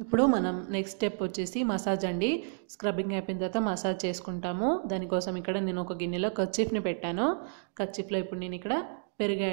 ఇప్పుడు మనం నెక్స్ట్ స్టెప్ వచ్చేసి మసాజ్ అండి. స్క్రబ్బింగ్ అయిపోయిన తర్వాత మసాజ్ చేసుకుంటాము. దానికోసం ఇక్కడ నేను ఒక గిన్నెలో కర్చీఫ్ని పెట్టాను. కర్చీఫ్లో ఇప్పుడు నేను ఇక్కడ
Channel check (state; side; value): silent; left; digital silence